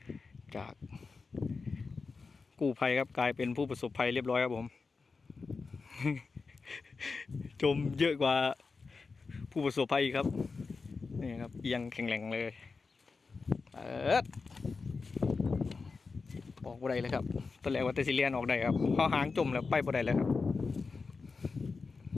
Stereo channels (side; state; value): right; quieter; 4.5 dB